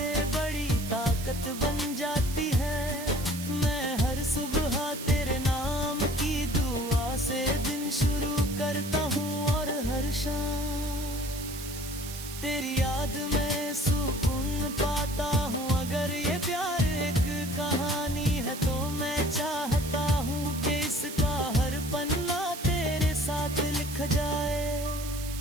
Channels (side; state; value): right; noise; hiss, 11 dB below the sound